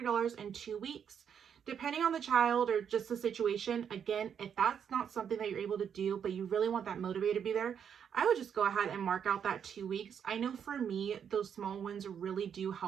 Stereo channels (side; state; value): left; quieter; 7.9 dB